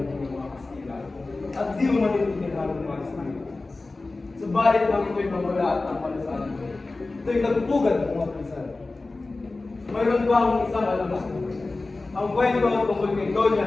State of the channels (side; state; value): right; quieter; 3.3 dB